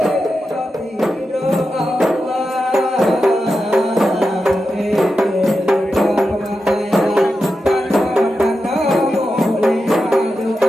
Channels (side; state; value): both; normal; correlation 0.89